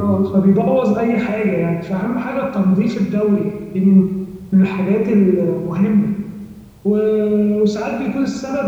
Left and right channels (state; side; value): identical; both; correlation 1.00